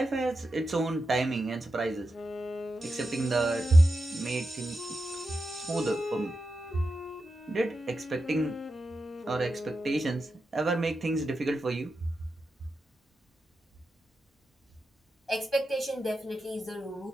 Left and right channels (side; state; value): both; normal; correlation 0.89